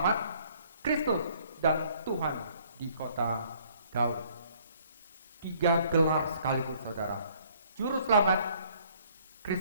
Kristus dan Tuhan di kota Daud. 3 gelar sekaligus, saudara. Juru Selamat,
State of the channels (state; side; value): inverted; both; correlation -0.61